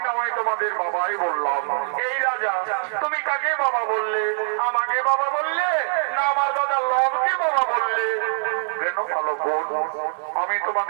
না হয় তোমাদের বাবাই বললাম। এই রাজা, তুমি কাকে বাবা বললে? আমাকে বাবা বললে না আমার দাদা লবকে বাবা বললে? কেন বালকগণ, আমি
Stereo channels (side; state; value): left; silent; digital silence